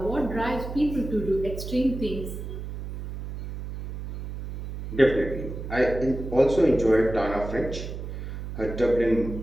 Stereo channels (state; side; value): noise; right; hum, 8 dB below the sound